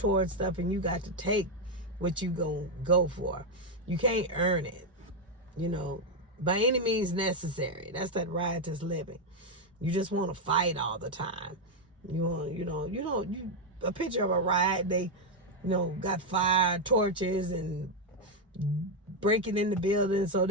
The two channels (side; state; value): both; normal; correlation 0.03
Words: stuff, and you got to take what you go for. You can't earn it, by any means necessary. That's that riotous living. You just want to fight all the time. A picture of a riot, they got fire torches and breaking in the building so